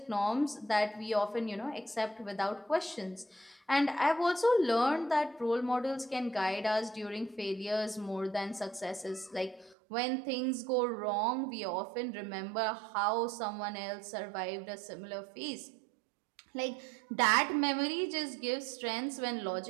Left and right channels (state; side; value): drops out; left; at 9.8 s